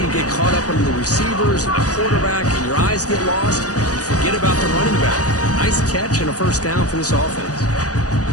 to get caught up under the receivers and the quarterback, and your eyes get lost. You forget about the running back. Nice catch and a first down for this offense.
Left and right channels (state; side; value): late; right; 0.67 ms